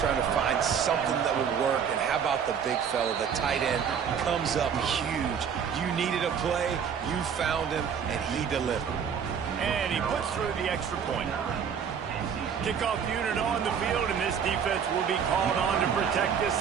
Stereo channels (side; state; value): left; quieter; 7.4 dB